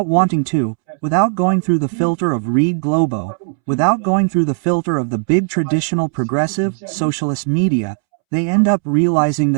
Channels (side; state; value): left; silent; 68 dB below the other